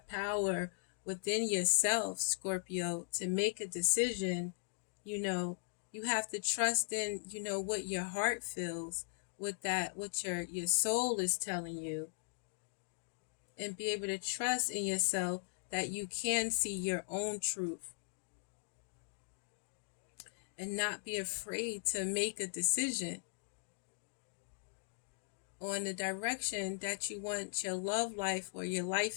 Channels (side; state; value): right; silent; digital silence